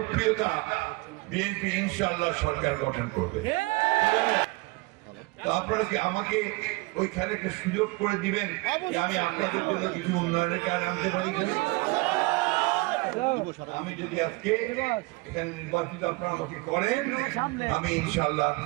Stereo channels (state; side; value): quieter; left; 25.2 dB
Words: বিএনপি ইনশাআল্লাহ সরকার গঠন করবে। তো আপনারা কি আমাকে ওইখানে একটা সুযোগ করে দিবেন যে আমি আপনাদের জন্য কিছু উন্নয়নের কাজ আনতে পারি? আমি যদি আজকে এখানে নির্বাচিত আপনারা আমাকে করেন, আমি ইনশাআল্লাহ